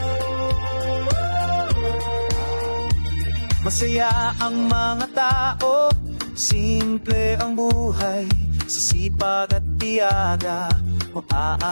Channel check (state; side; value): inverted; both; correlation -1.00